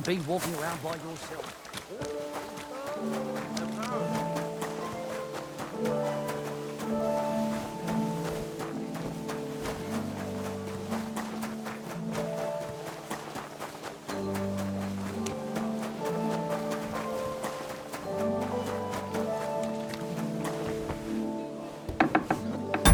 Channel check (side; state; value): both; identical; correlation 1.00